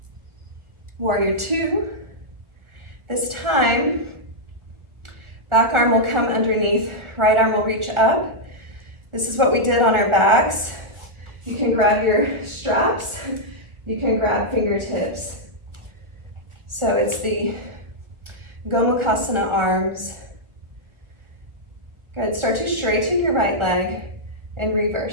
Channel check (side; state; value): left; late; 1.4 ms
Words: Warrior two. This time, back arm will come underneath, right arm will reach up. This is what we did on our backs. You can grab your straps, you can grab fingertips. So it's the Gomukhasana arms. Good, start to straighten your right leg and